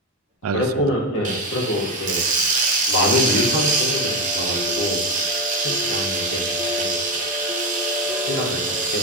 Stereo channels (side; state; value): both; normal; correlation 0.14